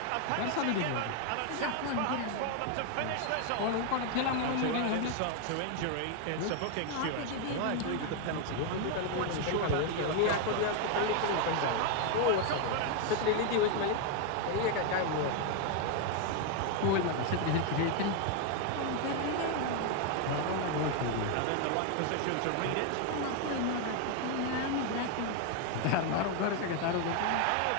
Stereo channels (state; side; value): different; both; correlation 0.01